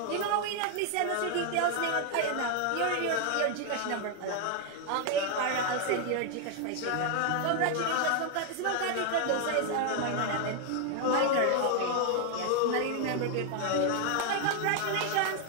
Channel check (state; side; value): different; both; correlation 0.00